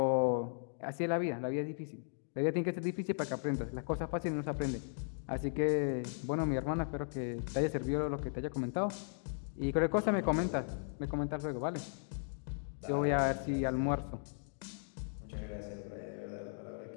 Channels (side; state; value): right; silent; digital silence